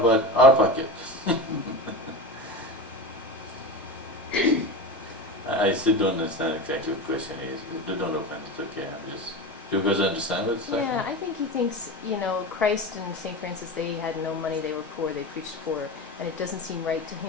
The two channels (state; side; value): normal; both; correlation 0.25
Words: our pocket? I still don't understand exactly what the question is. Don't open it, okay, I'm just You guys understand what it's like? Yeah, I think he thinks, Christ and St. Francis, they had no money, they were poor, they preached poor, and it doesn't seem right to